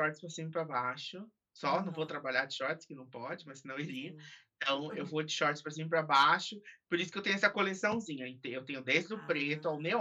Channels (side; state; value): both; identical; correlation 1.00